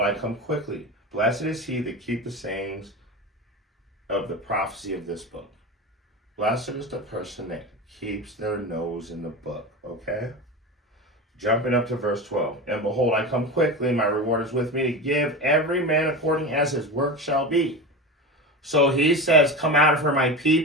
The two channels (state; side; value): normal; both; correlation 0.25